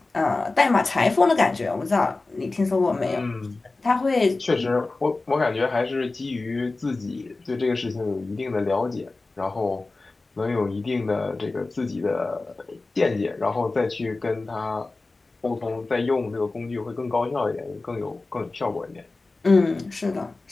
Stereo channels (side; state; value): right; quieter; 3.4 dB